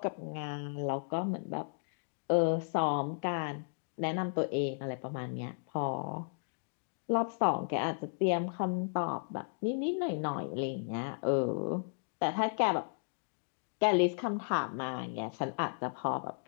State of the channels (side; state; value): right; silent; digital silence